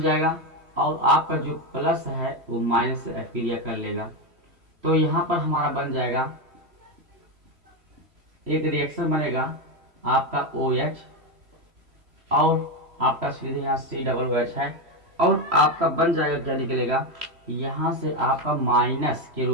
और आपका जो प्लस है वो माइनस से अक्रिया कर लेगा। तो यहाँ पर हमारा बन जाएगा एक रिएक्शन बनेगा आपका OH और आपका सीधे यहाँ COOH है और आपका बन जाएगा क्या निकलेगा, यहाँ से आपका माइनस के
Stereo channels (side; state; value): left; late; 3.0 ms